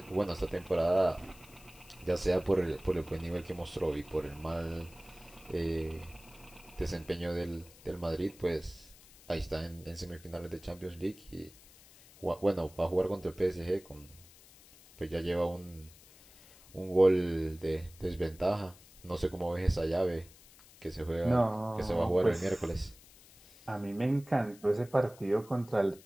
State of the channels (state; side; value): noise; left; hiss, 23 dB below the sound